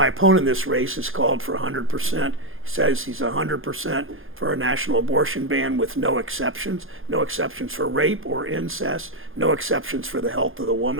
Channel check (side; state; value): left; late; 0.59 ms